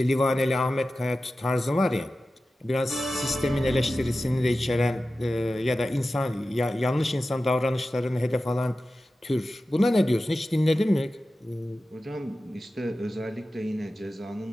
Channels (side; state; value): both; normal; correlation 0.94